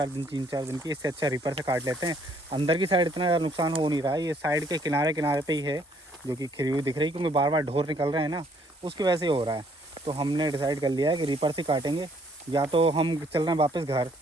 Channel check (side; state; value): both; normal; correlation 0.65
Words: दिन की। इससे अच्छा रीपर से काट लेते हैं। अंदर की साइड इतना ज़्यादा नुकसान हो नहीं रहा है, ये साइड के किनारे पे ही है जो कि खिरी हुई दिख रही है, क्योंकि बार बार ढोर निकल रहे हैं ना, उसकी वजह से हो रहा है। तो हमने डिसाइड कर लिया है कि रीपर से काटेंगे, या तो हम चल रहे हैं वापस घर,